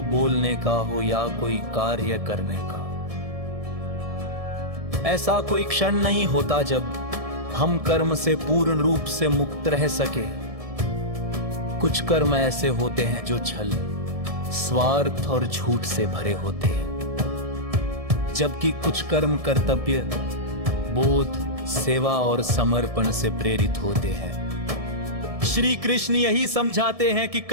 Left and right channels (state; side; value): late; left; 1.7 ms